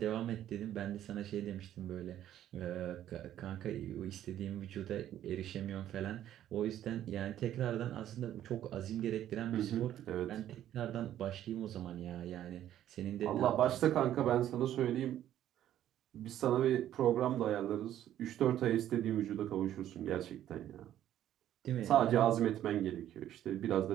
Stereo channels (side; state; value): left; quieter; 11.8 dB